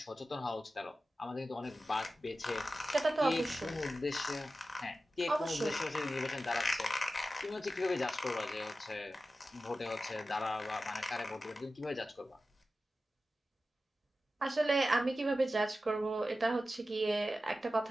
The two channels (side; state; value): both; normal; correlation 0.93